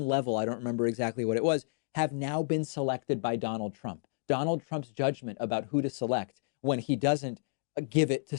level, I don't remember exactly what it was, have now been selected by Donald Trump. Donald Trump's judgment about who to select when he doesn't give it to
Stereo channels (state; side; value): silent; right; digital silence